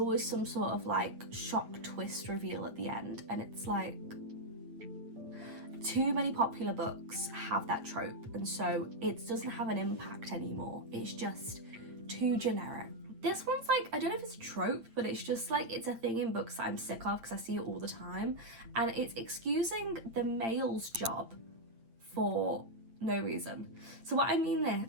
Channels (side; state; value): left; late; 8.7 ms